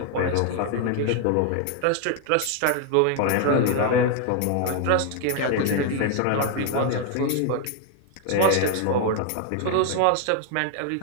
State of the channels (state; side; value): different; both; correlation 0.00